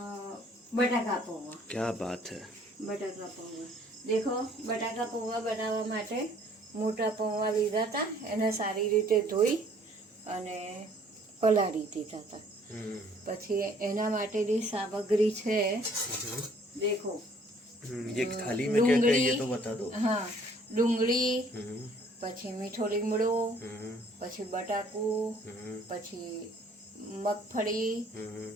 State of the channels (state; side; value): normal; both; correlation 0.59